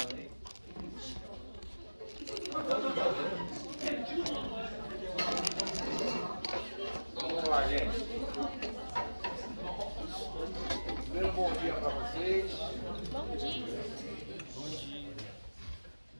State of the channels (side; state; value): both; inverted; correlation -1.00